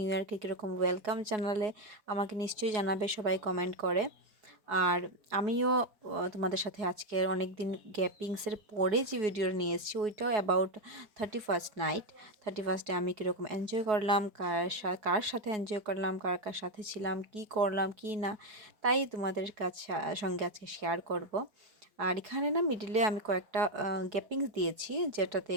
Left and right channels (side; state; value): left; late; 4.7 ms